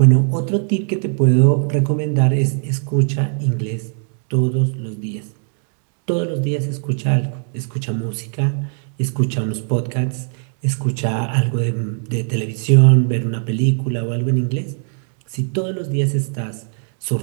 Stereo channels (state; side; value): silent; left; 59 dB below the other